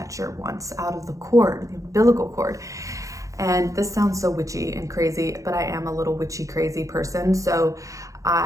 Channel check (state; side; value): late; left; 0.16 ms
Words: once out of the cord, the umbilical cord. And this sounds so witchy and crazy, but I am a little witchy crazy person, so